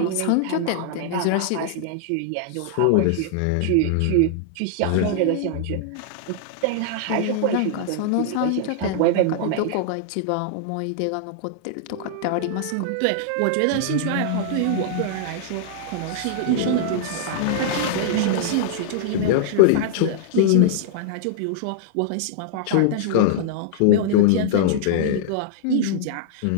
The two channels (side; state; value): both; different; correlation -0.01